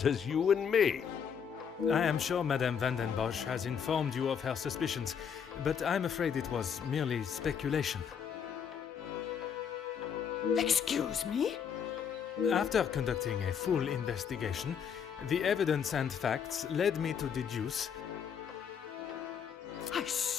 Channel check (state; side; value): quieter; right; 7.4 dB